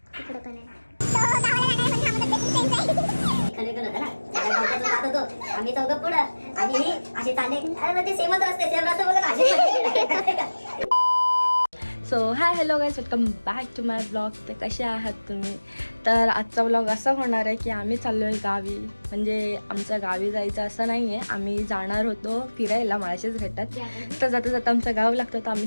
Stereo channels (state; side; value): inverted; both; correlation -1.00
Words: पुढे पण आहे. आम्ही चौघ पुढं आणि असे चालले. अरे ते सेमच रस्ते, सेम रस्ते बोलत. So hi hello guys, welcome back to my blog. तर कसे आहात तुम्ही? तर आजचा ब्लॉग असा होणार आहे की आम्ही चाललो आहे गावी. म्हणजे आमचं गावी जायचं असं नाही आहे, आम्ही जाणार होतो फिरायला माळशेज घाटात. तर जाता जाता आमचं गाव लागतं तर